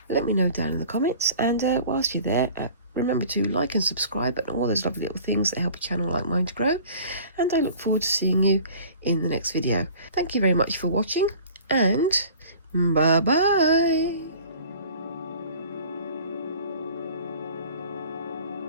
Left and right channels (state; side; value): inverted; both; correlation -0.46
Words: Let me know down in the comments, and whilst you're there, remember to like and subscribe and all those lovely little things that help a channel like mine to grow, and I look forward to seeing you in the next video. Thank you very much for watching, and bye bye.